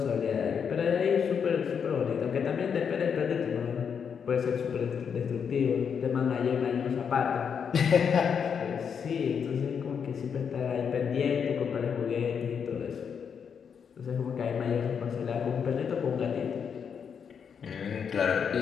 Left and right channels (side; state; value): right; quieter; 7.0 dB